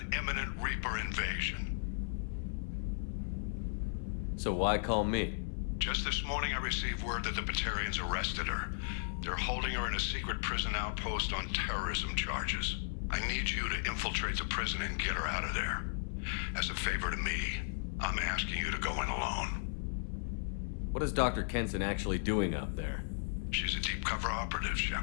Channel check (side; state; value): right; silent; 54 dB below the other